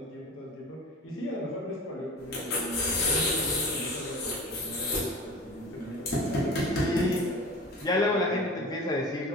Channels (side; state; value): both; normal; correlation 0.38